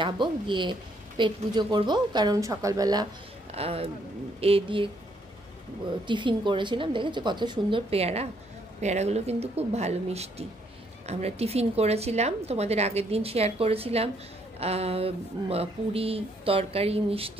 গিয়ে পেট পুজো করব, কারণ সকালবেলা এ দিয়ে টিফিন করেছিলাম। দেখেছো কত সুন্দর পেয়ারা, পেয়ারাগুলো কিন্তু খুব ভালো মিষ্টি। আমরা টিফিন করেছিলাম, তোমাদের আগের দিন শেয়ার করেছিলাম, পুরি তরকারি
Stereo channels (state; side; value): normal; both; correlation 0.70